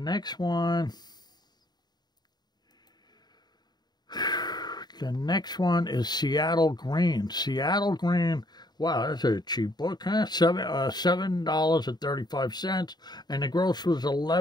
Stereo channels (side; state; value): right; late; 0.20 ms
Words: one... The next one is Seattle Green. Seattle Green, wow, that's a cheap book, huh? $7.35, and the gross was